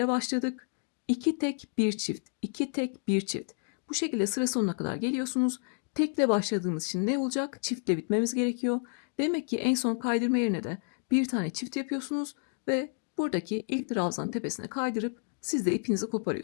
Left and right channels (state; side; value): silent; right; 57 dB below the other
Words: başladık. 2 tek bir çift, 2 tek bir çift. Bu şekilde sıra sonuna kadar geliyorsunuz. Tekle başladığımız için ne olacak? Çiftle bitmemiz gerekiyor. Demek ki en son kaydırma yerine de bir tane çift yapıyorsunuz ve buradaki ilk trabzan tepesine kaydırıp siz de ipinizi